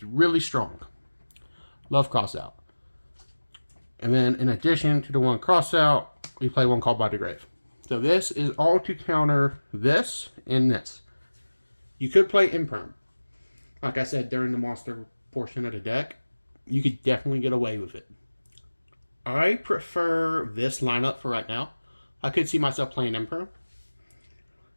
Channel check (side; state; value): both; inverted; correlation -1.00